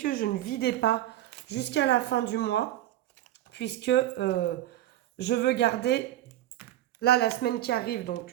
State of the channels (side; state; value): left; quieter; 13.9 dB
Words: je ne vidais pas jusqu'à la fin du mois, puisque je veux garder, là, la semaine qui arrive,